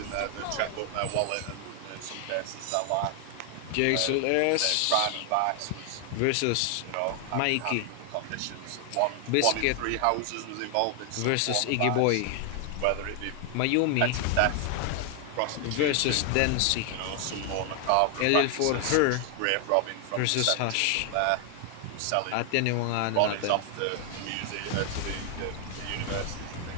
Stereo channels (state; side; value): different; both; correlation 0.00